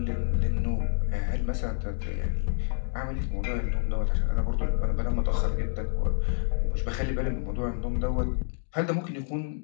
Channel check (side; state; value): right; silent; 59 dB below the other